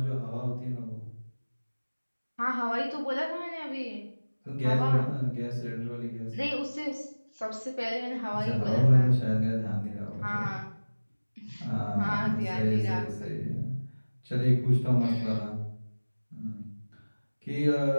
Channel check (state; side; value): inverted; both; correlation -1.00